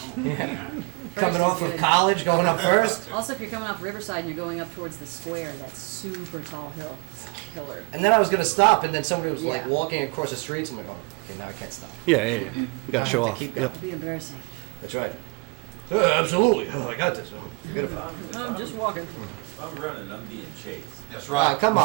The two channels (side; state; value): left; quieter; 29.8 dB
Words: Yeah. First Coming is off of good. college, going up first. Also, if you're coming off Riverside and you're going up towards the square, that super tall hill. It's a killer. And then I was gonna stop, and then somebody was like Yeah. walking across the streets. I'm like, oh, okay, now I can't stop. Yeah. You gotta show off. Keep Yep. It'd be embarrassing. That's right. Absolutely. Oh, I got this. Forget about it. I'm just walking. If I'm running, I'm being chased. That's Oh, come